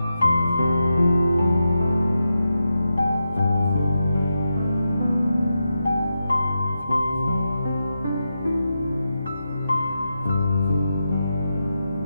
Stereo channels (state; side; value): inverted; both; correlation -0.88